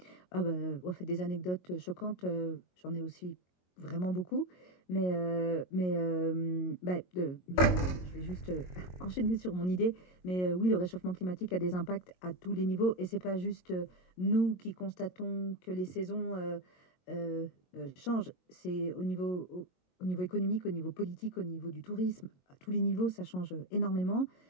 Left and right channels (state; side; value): late; right; 22 ms